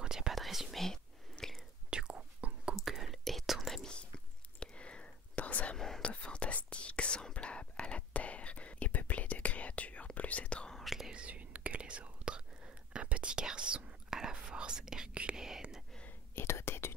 il n'y a pas de résumé. Du coup, Google est ton ami. Dans un monde fantastique semblable à la Terre et peuplé de créatures plus étranges les unes que les autres, un petit garçon à la force herculéenne et doté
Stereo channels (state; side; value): normal; both; correlation 0.39